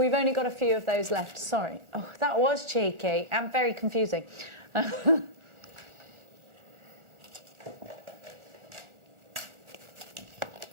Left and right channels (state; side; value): late; left; 1.4 ms